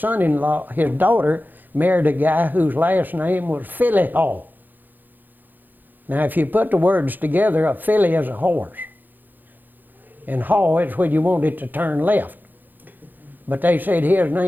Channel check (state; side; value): late; left; 0.087 ms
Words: his daughter, married a guy whose last name was Philly Hall. Now, if you put the words together, a filly is a horse. And haw is when you want it to turn left. But they said his